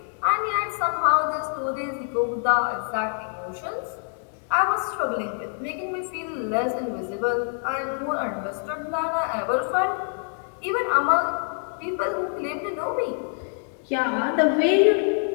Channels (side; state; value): right; silent; 57 dB below the other